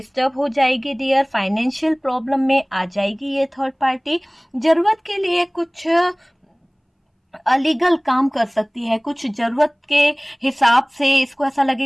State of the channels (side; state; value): both; identical; correlation 1.00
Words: हो जाएगी डियर, फाइनेंशियल प्रॉब्लम में आ जाएगी ये थर्ड पार्टी, जरूरत के लिए कुछ अलीगल काम कर सकती है, कुछ जरूरत के हिसाब से इसको ऐसा